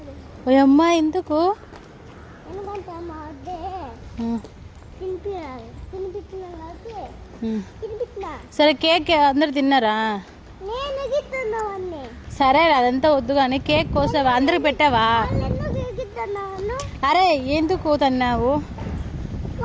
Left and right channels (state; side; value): identical; both; correlation 1.00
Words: ఓ అమ్మా ఎందుకు? సరే కేక్ అందరు తిన్నారా? సరే అదంతా వద్దు కానీ కేక్ కోసావా? అందరికి పెట్టావా? అరే ఎందుకు తన్నావు?